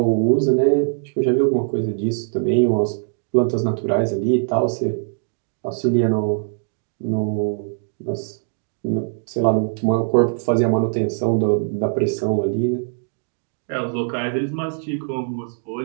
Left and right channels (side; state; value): left; silent; digital silence